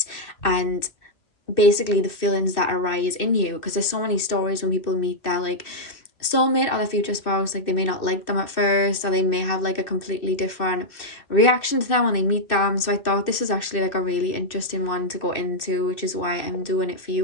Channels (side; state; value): right; late; 2.7 ms